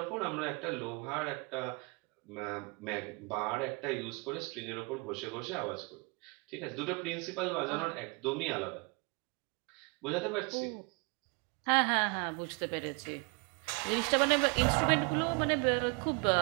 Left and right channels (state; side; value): quieter; left; 30.9 dB